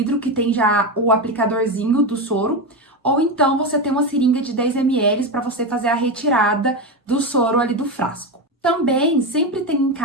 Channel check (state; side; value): normal; both; correlation 0.15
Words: que tem já o aplicadorzinho do soro, ou então você tem uma seringa de 10 ml para você fazer a retirada do soro ali do frasco. Também sempre tem em